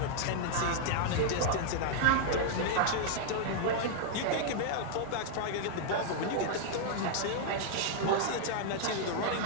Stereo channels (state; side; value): different; both; correlation -0.01